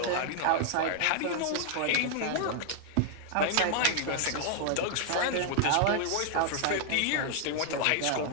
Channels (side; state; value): both; different; correlation 0.00